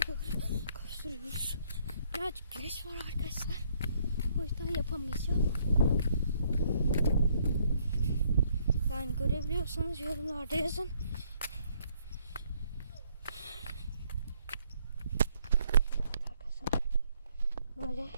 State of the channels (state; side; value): inverted; both; correlation -0.67